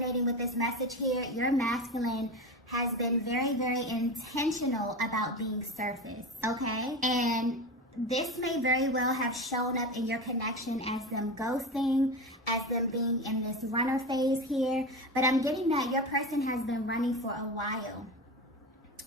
with this message here, your masculine has been very intentional about being surface, okay? And this may very well have shown up in your connection as them ghosting, as them being in this runner phase here. But I'm getting that your person has been running for a while.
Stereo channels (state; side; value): normal; both; correlation 0.25